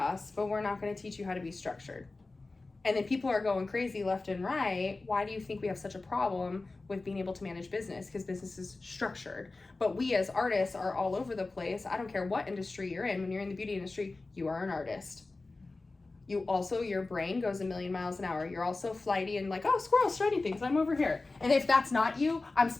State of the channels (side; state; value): right; quieter; 3.4 dB